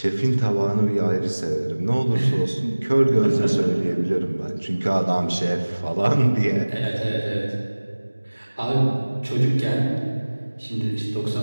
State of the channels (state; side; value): inverted; both; correlation -1.00